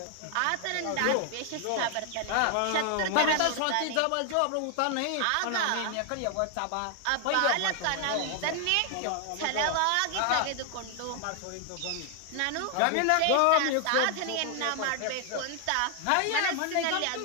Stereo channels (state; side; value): different; both; correlation 0.00